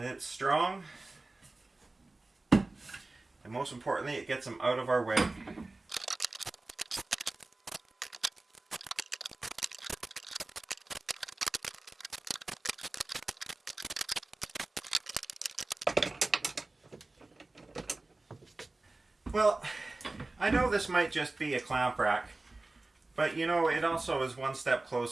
it's strong. And most importantly, it gets them out of our way. Well, I know this might just be a clamp rack, but you know, it also is one step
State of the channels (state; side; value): quieter; left; 3.1 dB